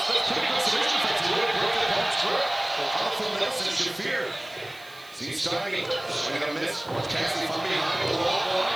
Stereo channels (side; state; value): right; noise; hiss, 24 dB below the sound